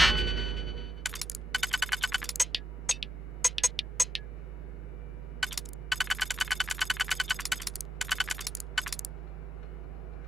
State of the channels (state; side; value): normal; both; correlation 0.85